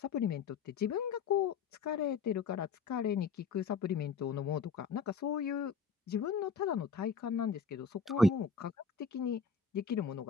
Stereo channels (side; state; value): right; quieter; 5.2 dB